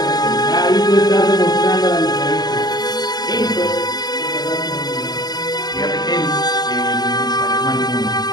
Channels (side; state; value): right; late; 0.20 ms